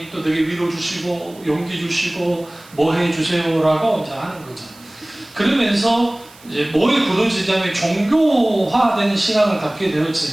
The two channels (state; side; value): noise; right; hiss, 24 dB below the sound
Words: 또 내게 위로 주시고 용기 주시고 뭐 해주세요라고 이제 하는 거죠. 그러면서 이제 뭐에 굳어지냐면 종교화된 신앙을 갖게